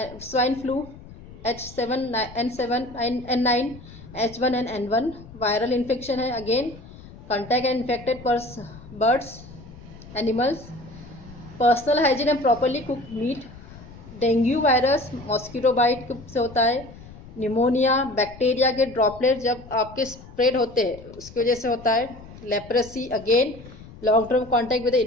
swine flu, H7N7 N9, H1 and N1, viral infection है again, contact and infected birds, animals, personal hygiene and properly cooked meat. Dengue virus mosquito bite से होता है. Pneumonia, bacteria के droplet जब आपके spread होते हैं उसकी वजह से होता है. Leprosy again long term contact with the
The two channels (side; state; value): left; noise; rumble, 18 dB below the sound